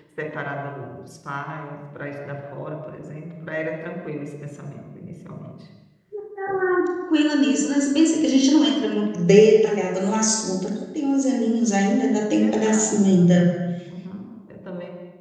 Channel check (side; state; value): both; identical; correlation 1.00